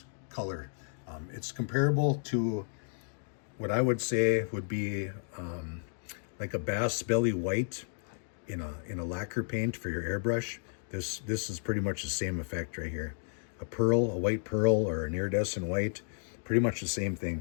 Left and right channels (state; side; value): silent; right; digital silence